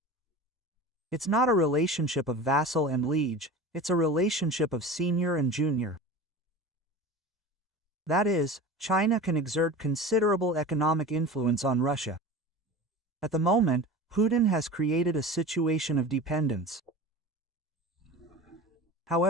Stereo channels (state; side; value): normal; both; correlation 0.34